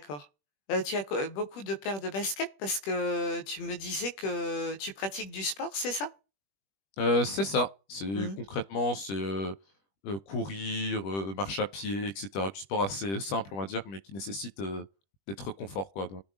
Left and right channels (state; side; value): late; right; 21 ms